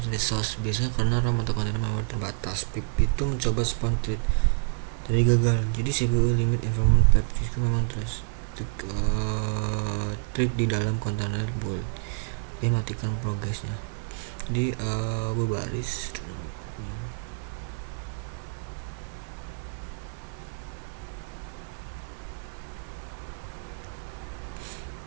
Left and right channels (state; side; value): silent; left; digital silence